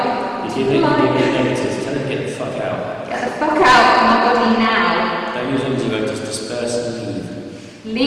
You're giving negatives. Tell them to get the fuck out. Get the fuck out of my body now. Don't use antidote, just disperse and leave.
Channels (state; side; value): identical; both; correlation 1.00